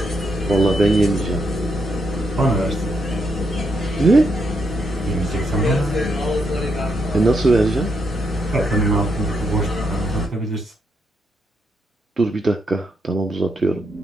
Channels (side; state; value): both; normal; correlation 0.79